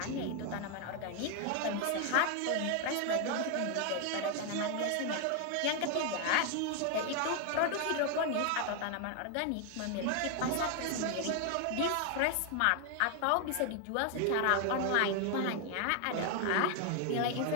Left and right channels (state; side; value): different; both; correlation 0.01